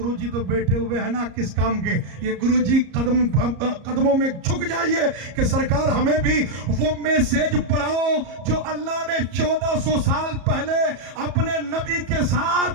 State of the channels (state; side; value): late; left; 34 ms